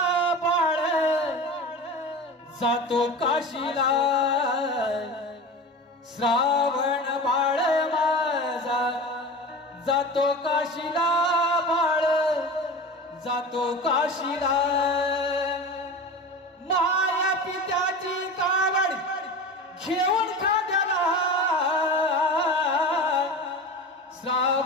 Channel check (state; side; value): normal; both; correlation 0.31